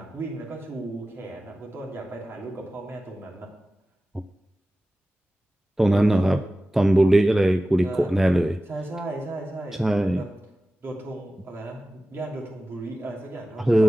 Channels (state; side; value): normal; both; correlation 0.96